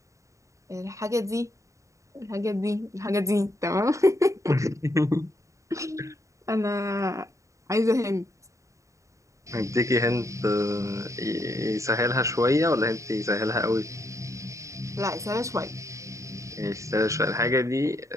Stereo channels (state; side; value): late; left; 0.15 ms